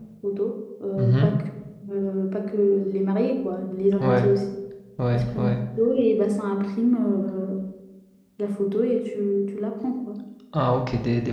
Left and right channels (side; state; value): both; identical; correlation 1.00